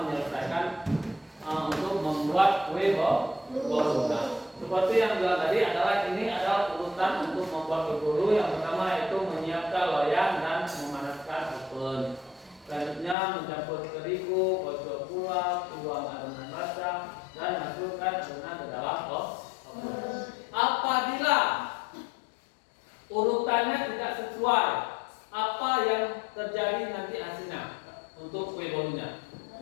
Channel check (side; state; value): right; drops out; at 13.2 s